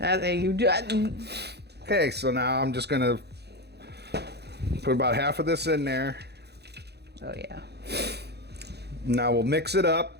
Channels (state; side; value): late; left; 0.48 ms